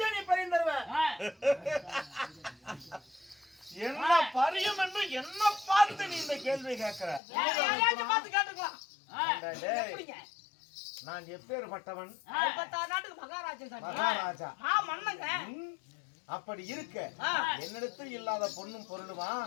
நீ பறி தருவ? என்ன பரியம் என்று என்ன பார்த்து நீ இந்த கேள்வி கேட்கிற? பார்த்து கேட்டுக்கலாம். நான் எப்பேற்பட்டவன்? நாட்டுக்கு மகாராஜா. மன்னங்க. அப்படி இருக்க என்னிடத்தில் இல்லாத பொண்ணும் பொருளுமா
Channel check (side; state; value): right; drops out; at 7.2 s